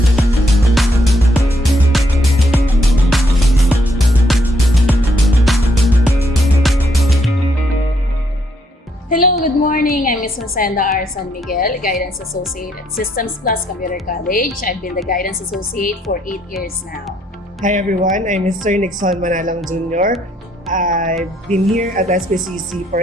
good morning. I'm Ms. Rosenda R. San Miguel, Guidance Associate at Systems Plus Computer College. I've been the Guidance Associate for 8 years now. Hi everyone, I'm Mr. Nixon Manalang Jr. I've been here at SPCC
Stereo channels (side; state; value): both; normal; correlation 0.72